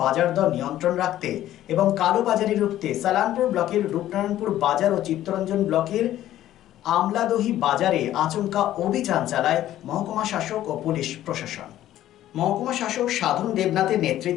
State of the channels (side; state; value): right; quieter; 13.1 dB